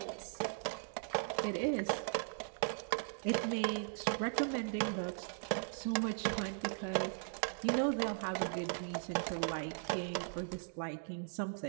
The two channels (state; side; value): silent; left; digital silence